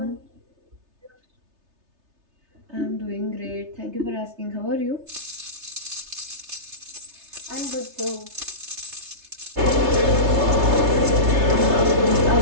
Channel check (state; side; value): late; left; 3.3 ms